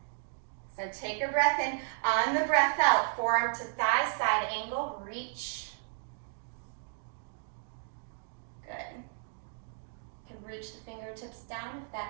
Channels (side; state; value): left; silent; digital silence